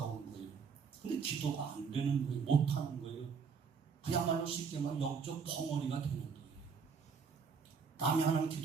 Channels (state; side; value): quieter; left; 5.9 dB